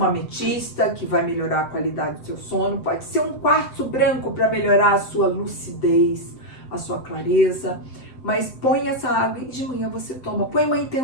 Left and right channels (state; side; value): late; right; 7.8 ms